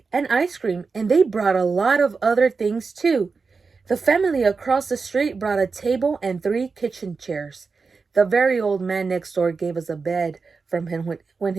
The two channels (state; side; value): quieter; left; 4.7 dB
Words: and ice cream, and they brought a lot of other things too. The family across the street brought a table and 3 kitchen chairs. The very old man next door gave us a bed from him when